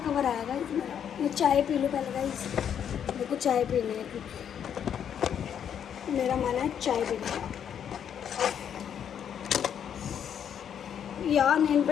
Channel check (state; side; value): quieter; right; 8.7 dB